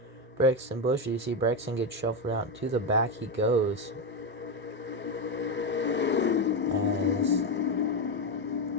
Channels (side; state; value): both; normal; correlation 0.11